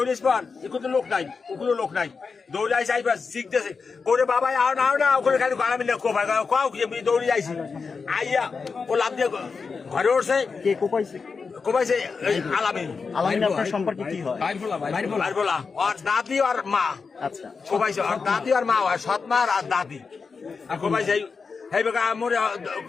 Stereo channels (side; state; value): right; quieter; 5.0 dB